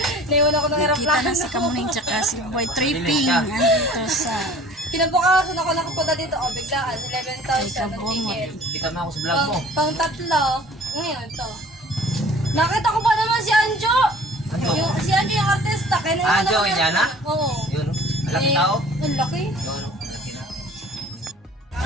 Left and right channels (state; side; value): normal; both; correlation 0.49